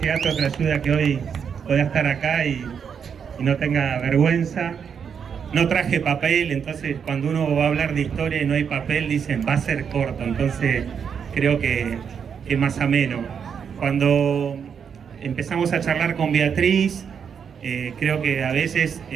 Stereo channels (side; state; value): left; quieter; 7.1 dB